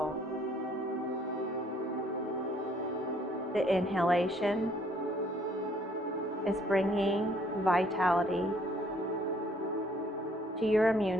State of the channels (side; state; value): both; normal; correlation 0.63